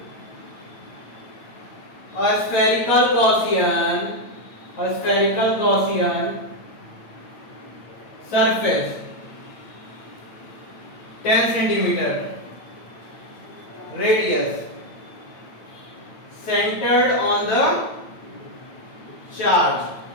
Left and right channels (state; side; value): late; right; 8.9 ms